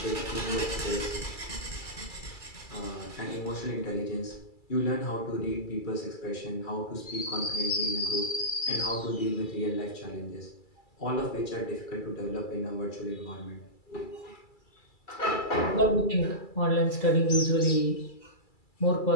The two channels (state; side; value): late; right; 2.3 ms